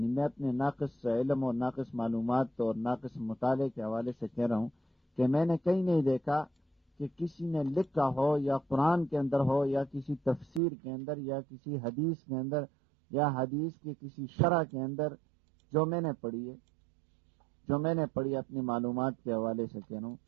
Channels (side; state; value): left; drops out; at 10.6 s